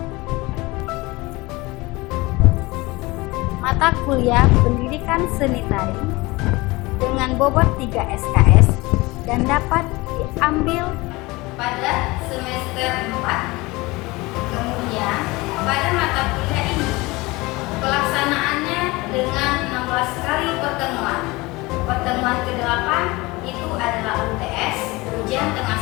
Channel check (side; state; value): right; quieter; 22.4 dB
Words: Mata kuliah pendidikan seni tari dengan bobot 3 SKS dan dapat diambil pada semester 4. Kemudian pada mata kuliah ini pelaksanaannya dengan 16 kali pertemuan. Pertemuan ke-8 itu adalah UTS, ujian tengah